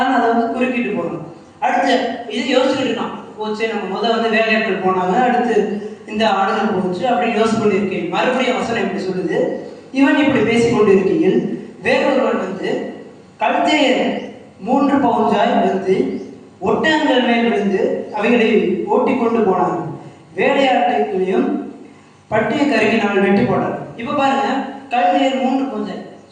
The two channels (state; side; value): identical; both; correlation 1.00